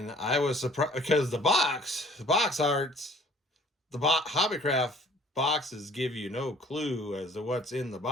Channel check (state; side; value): normal; both; correlation 0.54